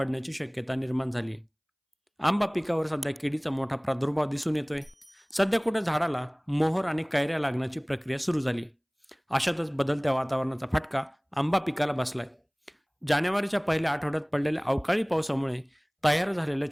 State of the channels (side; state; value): both; identical; correlation 1.00